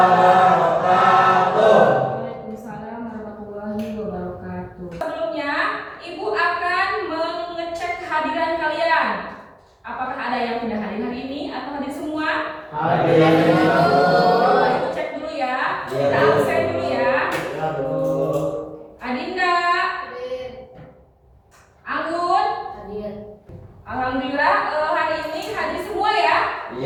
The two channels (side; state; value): both; identical; correlation 1.00